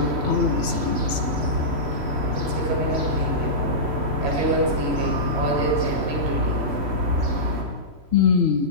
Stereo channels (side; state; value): left; late; 3.0 ms